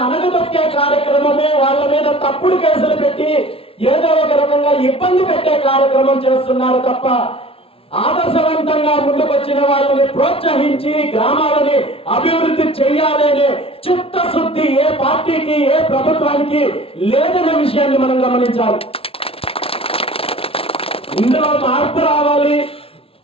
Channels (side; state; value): right; late; 0.27 ms